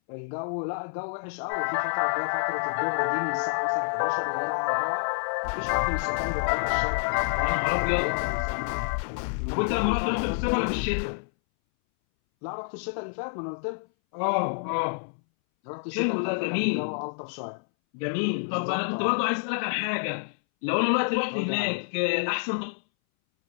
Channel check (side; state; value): right; silent; 59 dB below the other